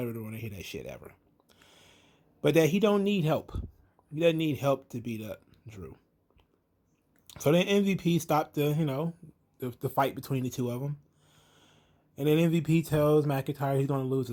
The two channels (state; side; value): identical; both; correlation 1.00